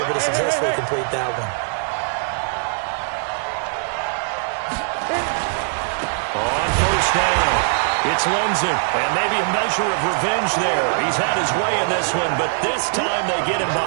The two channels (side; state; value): left; silent; digital silence